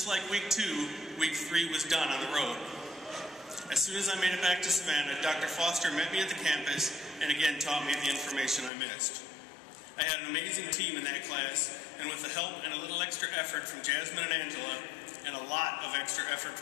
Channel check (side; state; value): right; drops out; at 8.7 s